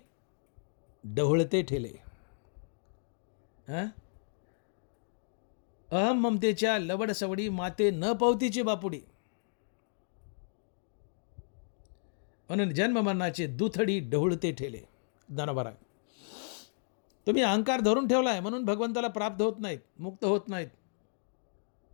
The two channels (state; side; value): silent; right; digital silence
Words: ढवळते ठेले. अहम ममतेच्या लवड सवडी माते न पवतीची बापुडी, म्हणून जन्ममरणाचे दुथडी ढवळते ठेले. दानवरा, तुम्ही अहंकार धरून ठेवला आहे म्हणून भगवंताला प्राप्त होत नाहीत, मुक्त होत नाहीत.